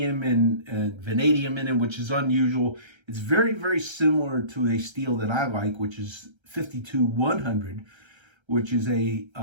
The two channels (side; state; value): left; late; 1.3 ms